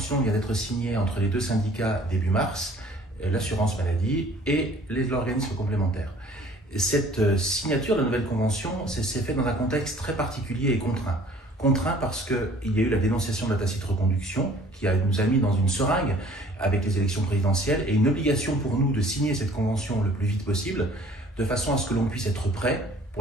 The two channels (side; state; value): both; normal; correlation 0.53